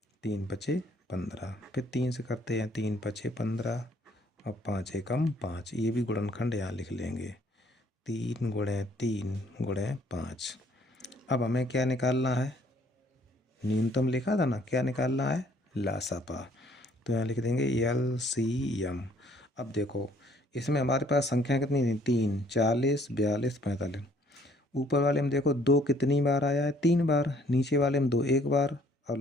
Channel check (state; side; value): normal; both; correlation 0.61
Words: 3 बचे 15। फिर 3 से करते हैं, 3 बचे 15 और 5 एकम 5। ये भी गुणनखंड यहाँ लिख लेंगे। 3 गुणे 3 गुणे 5। अब हमें क्या निकालना है? न्यूनतम लिखा था ना, क्या निकालना है? लासापा। तो यहाँ लिख देंगे LCM। अब देखो इसमें हमारे पास संख्या कितनी थी? 3, 40, 42, 45। ऊपर वाले में देखो 2 कितनी बार आया है? 3 बार। नीचे वाले में 2 एक बार और